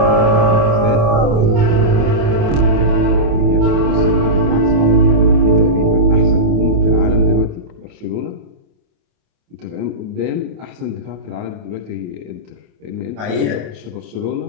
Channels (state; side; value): late; left; 28 ms